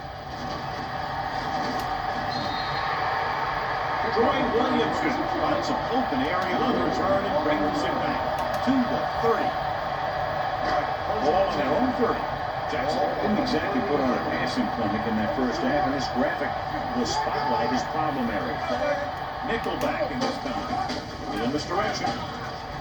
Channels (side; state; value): both; identical; correlation 1.00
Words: Troy Williamson finds an open area on the return and brings it back to the 30. Ball on their own 30. Jackson didn't exactly put on a passing clinic in that first half, and this graphic will spotlight his problem area. Nickelback in this time. In this direction.